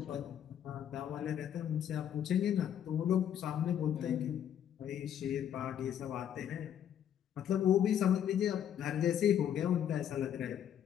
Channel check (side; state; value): right; quieter; 9.7 dB